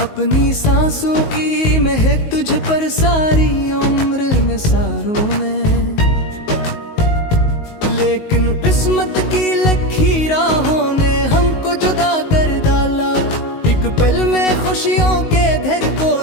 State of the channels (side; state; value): right; late; 19 ms